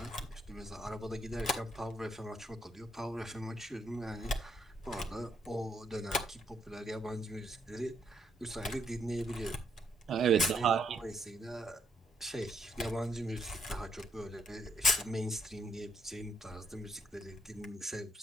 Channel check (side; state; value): both; normal; correlation 0.73